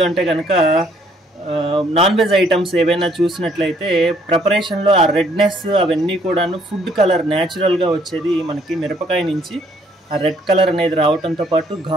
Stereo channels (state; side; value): normal; both; correlation 0.65